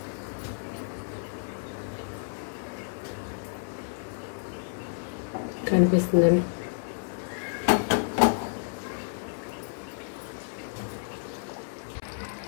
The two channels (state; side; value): silent; right; 58 dB below the other